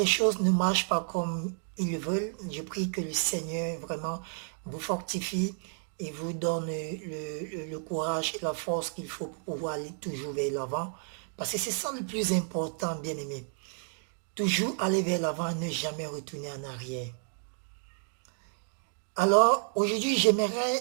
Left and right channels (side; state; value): left; silent; 57 dB below the other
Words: choses ne marchent pas comme ils le veulent, je prie que le Seigneur vraiment vous fortifie et vous donne le courage et la force qu'il faut pour pouvoir aller toujours vers l'avant. Parce que c'est ça le plus important, bien aimé. Toujours aller vers l'avant et ne jamais retourner en arrière. Alors, aujourd'hui,